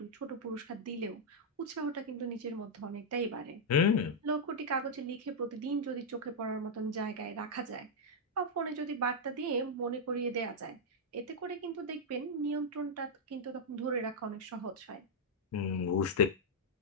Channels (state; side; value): normal; both; correlation -0.05